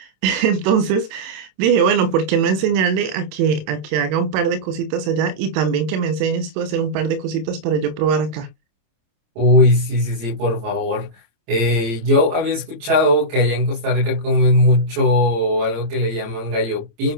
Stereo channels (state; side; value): late; left; 26 ms